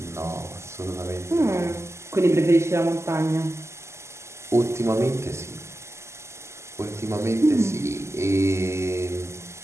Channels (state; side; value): late; left; 0.13 ms